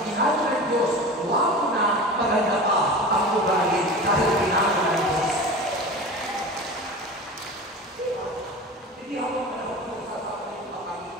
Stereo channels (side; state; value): both; normal; correlation 0.33